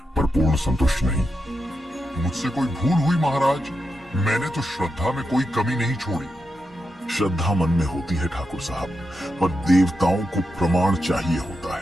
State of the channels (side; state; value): both; normal; correlation 0.87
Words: पर पूर्ण संतुष्ट नहीं। मुझसे कोई भूल हुई महाराज? मैंने तो श्रद्धा में कोई कमी नहीं छोड़ी। श्रद्धा मन में होती है ठाकुर साहब, पर देवताओं को प्रमाण चाहिए होता